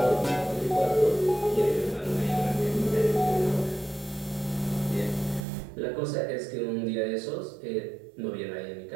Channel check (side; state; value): left; drops out; at 5.5 s